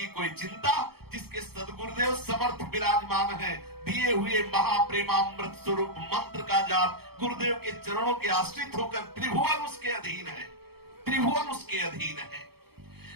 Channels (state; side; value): late; left; 0.96 ms